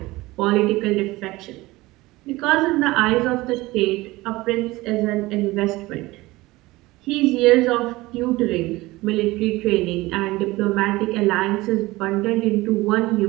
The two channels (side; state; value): left; quieter; 19.9 dB